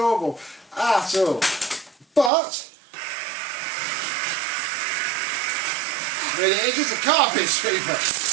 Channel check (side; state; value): left; drops out; at 2.3 s